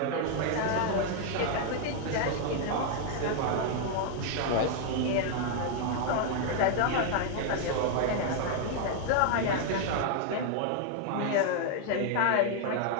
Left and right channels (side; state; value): both; different; correlation 0.00